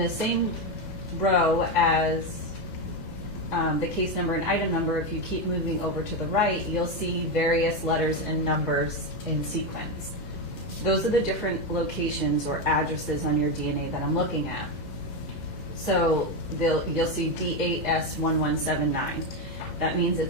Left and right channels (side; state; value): left; late; 2.1 ms